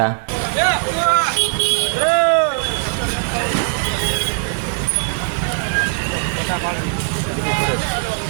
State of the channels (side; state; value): left; silent; 56 dB below the other